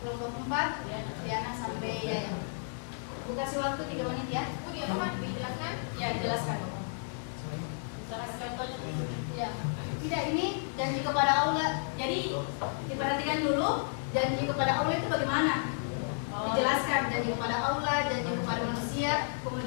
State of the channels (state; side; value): silent; right; digital silence